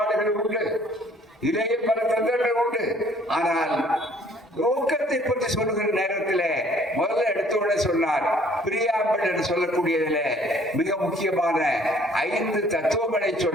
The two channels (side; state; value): both; normal; correlation 0.58